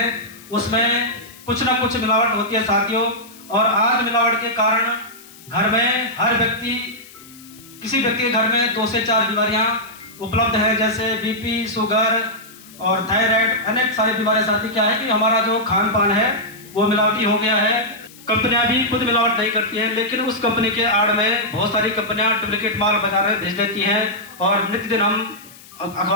उसमें कुछ ना कुछ मिलावट होती है साथियों। और आज मिलावट के कारण घर में हर व्यक्ति, किसी व्यक्ति के घर में 2 से 4 बीमारियां उपलब्ध है, जैसे बीपी, शुगर और थायराइड, अनेक सारी बीमारियां। साथी क्या है कि हमारा जो खान पान है वो मिलावटी हो गया है। कंपनियां भी खुद मिलावट नहीं करती हैं, लेकिन उस कंपनी के आड़ में बहुत सारी कंपनियां डुप्लीकेट माल बाजार में भेज देती हैं और नित्य दिन हम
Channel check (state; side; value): noise; left; hiss, 21 dB below the sound